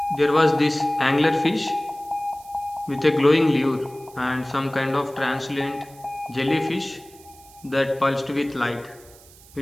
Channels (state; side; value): noise; right; hiss, 24 dB below the sound